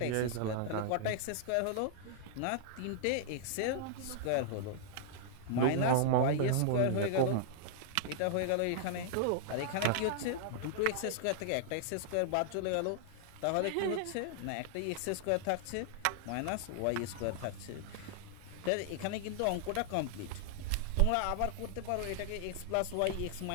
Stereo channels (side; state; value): both; different; correlation -0.01